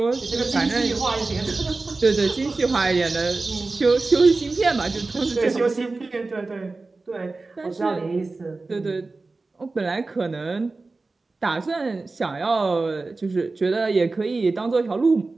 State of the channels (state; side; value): quieter; left; 3.6 dB